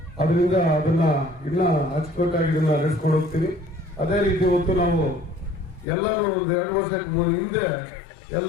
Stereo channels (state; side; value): drops out; right; at 5.9 s